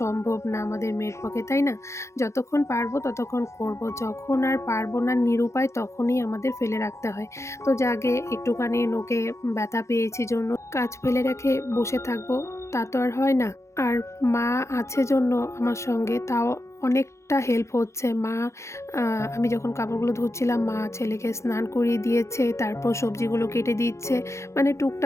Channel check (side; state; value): right; late; 0.14 ms